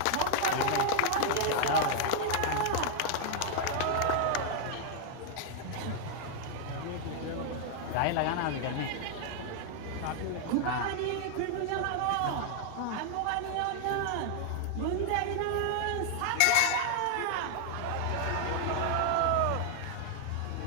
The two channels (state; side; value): different; both; correlation 0.00